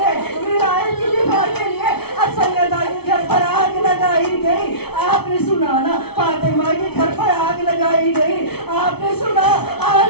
विलायत की दिफा के लिए। अब सैयदा के घर पर आग लगाई गई। आपने सुना ना, फातिमा के घर पर आग लगाई गई। आपने सुना,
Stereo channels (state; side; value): late; right; 0.96 ms